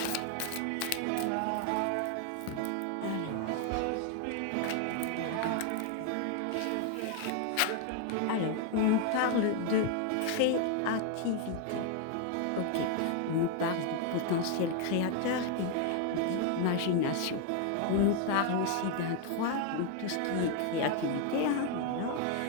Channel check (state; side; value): different; both; correlation 0.01